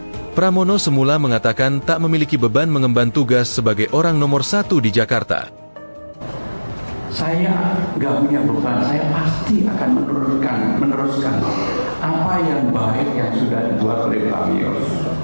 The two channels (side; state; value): both; inverted; correlation -1.00